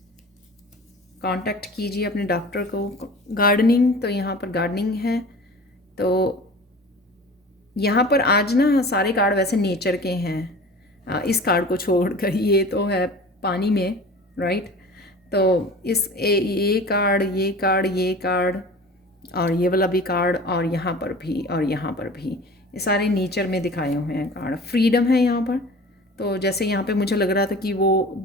कांटेक्ट कीजिए अपने डॉक्टर को। गार्डनिंग, तो यहाँ पर गार्डनिंग है, तो यहाँ पर आज ना सारे कार्ड वैसे नेचर के हैं, इस कार्ड को छोड़कर, ये तो है पानी में, राइट। तो ये कार्ड, ये कार्ड, ये कार्ड, और ये वाला भी कार्ड, और यहाँ पर भी, और यहाँ पर भी, ये सारे नेचर में दिखाए हुए हैं कार्ड। फ्रीडम है यहाँ पर, तो जैसे यहाँ पे मुझे लग रहा था कि वो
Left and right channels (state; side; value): normal; both; correlation 0.40